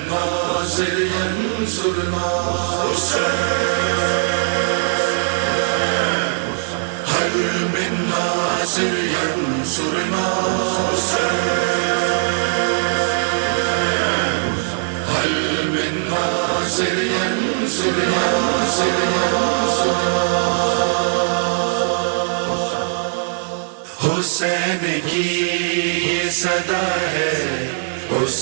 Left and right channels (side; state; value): left; silent; digital silence